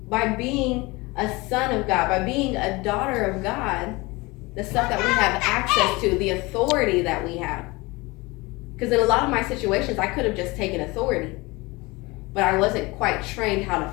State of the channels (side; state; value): right; quieter; 23.5 dB